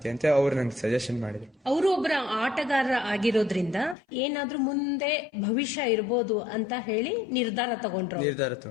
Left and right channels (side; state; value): right; drops out; at 4.0 s